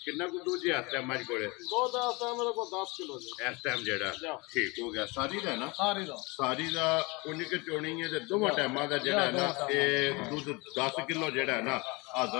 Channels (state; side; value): quieter; right; 26.4 dB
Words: ਕਿੰਨਾ ਕੁ ਦੂਜੇ ਹੱਥ ਹੈ ਮੱਝ ਕੋਲੇ ਦੋ ਦਾ ਮੇਰੇ ਕੋਲ 10 ਕਿਲੋ ਜੀ ਇਸ ਟਾਈਮ ਜਿਹੜਾ ਠੀਕ ਹੋ ਗਿਆ ਸਾਰੀ ਦਾ ਨਾ ਸਾਰੀ ਦਾ ਉਨੀ ਕਿ ਚੋਣੀ ਹੈ ਤੇ ਦੋਵਾਂ ਟਾਈਮਾਂ ਦਾ ਜਿਹੜਾ ਨਾ ਇਹ ਦੁੱਧ 10 ਕਿਲੋ ਜਿਹੜਾ ਨਾ